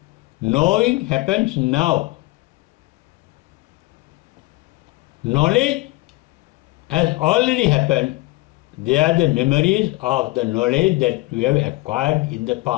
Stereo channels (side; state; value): right; quieter; 21.1 dB